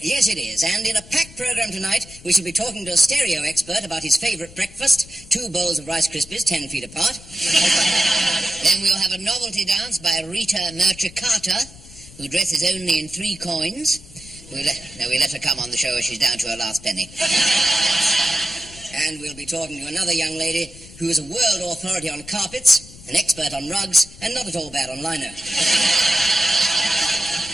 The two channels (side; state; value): left; noise; rumble, 19 dB below the sound